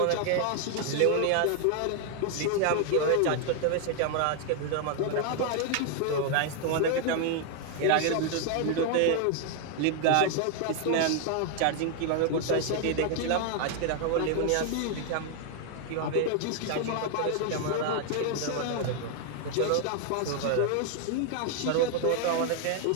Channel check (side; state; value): both; different; correlation 0.00